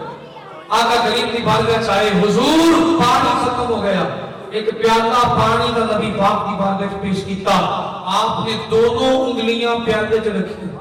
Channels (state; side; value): identical; both; correlation 1.00